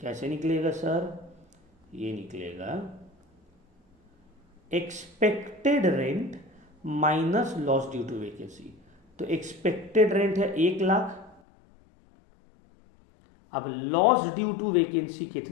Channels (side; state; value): right; drops out; at 11.4 s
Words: कैसे निकलेगा सर? ये निकलेगा expected rent minus loss due to vacancy. तो एक्सपेक्टेड रेंट है 1,00,000। अब लॉस ड्यू टू वैकेंसी